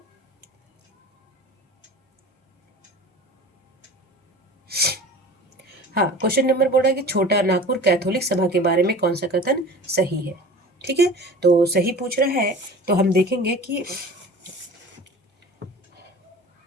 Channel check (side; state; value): both; normal; correlation 0.39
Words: हाँ, क्वेश्चन नंबर बोल रहा है कि छोटा नागपुर कैथोलिक सभा के बारे में कौन सा कथन सही है। ठीक है, तो सही पूछ रहा है, तो हम देखेंगे कि